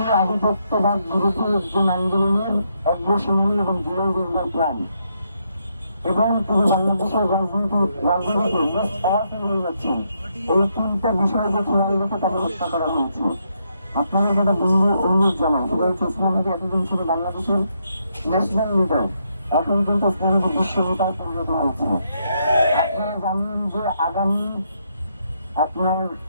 আধিপত্যবাদ বিরোধী একজন আন্দোলনের অগ্রসেনী এবং জুলাই যোদ্ধার প্রাণ, এবং তিনি বাংলাদেশের রাজনীতিতে মোস্ট পাওয়ারফুল হয়ে যাচ্ছেন। এই তিনটা বিষয়কে খেয়াল রেখে তাকে হত্যা করা হয়েছে। আপনাদের যেটা অনুরোধ জানাই সেটা হচ্ছে, উসমান হাদি এতদিন ছিল বাংলাদেশের ন্যাশনাল লিডার, এখন কিন্তু উসমান হাদি বিশ্ব নেতায় পরিণত হয়েছে। আপনারা জানেন যে আগামী আপনার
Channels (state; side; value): inverted; both; correlation -0.77